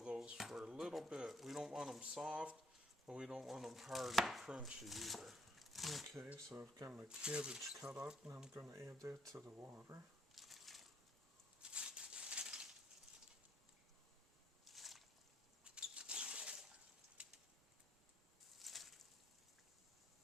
for a little bit. We don't want them soft, but we don't want them hard and crunchy either. Okay, so I've got my cabbage cut up, and I'm going to add that to the water.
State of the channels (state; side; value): normal; both; correlation 0.71